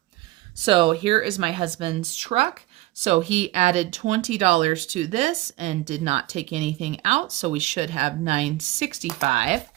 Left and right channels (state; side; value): quieter; left; 18.7 dB